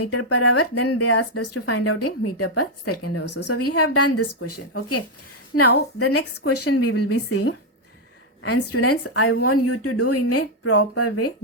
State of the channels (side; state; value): both; normal; correlation 0.00